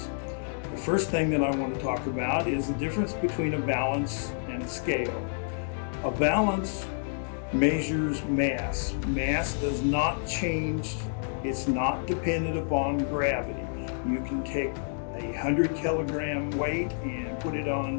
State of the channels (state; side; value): silent; right; digital silence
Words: The first thing that I want to talk about is the difference between a balance and a scale. A balance measures mass. Mass does not change. It's not dependent upon gravity. You can take a 100 kilogram weight and put it